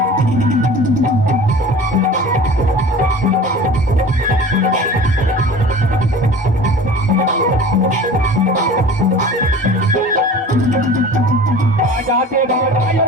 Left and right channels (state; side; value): normal; both; correlation 0.40